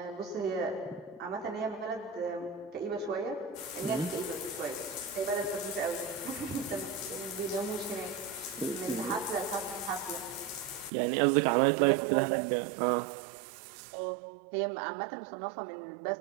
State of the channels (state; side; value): drops out; left; at 10.9 s